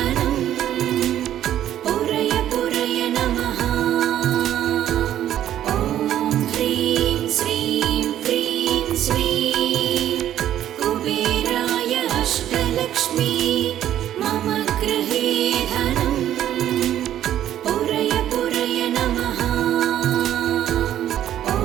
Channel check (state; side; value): quieter; left; 11.5 dB